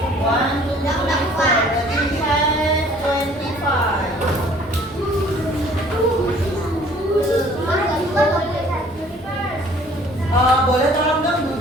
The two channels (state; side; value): normal; both; correlation 0.54